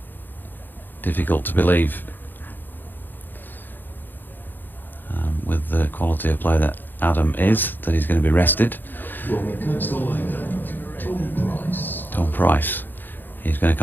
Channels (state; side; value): late; right; 0.091 ms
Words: difficult to believe with the quality of play that Adam is, that he's going to be rested. Tom Price. He's going to